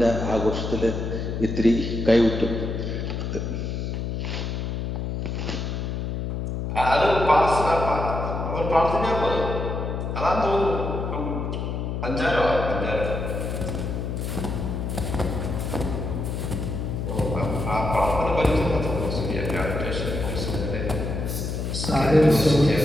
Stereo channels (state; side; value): noise; left; hum, 3 dB below the sound